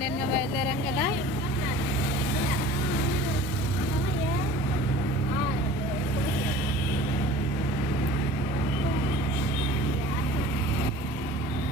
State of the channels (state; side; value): normal; both; correlation 0.43